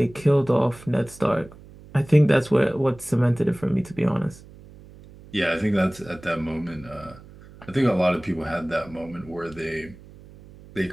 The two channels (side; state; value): right; noise; hum, 21 dB below the sound